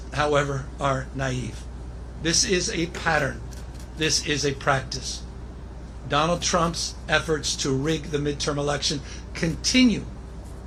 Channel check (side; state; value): both; identical; correlation 1.00